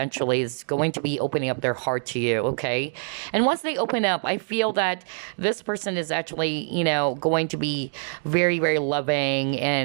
is going to be opening up their heart to you, okay? And once they open up, I feel that this person is actually, going to be very, very loving.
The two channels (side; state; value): left; silent; digital silence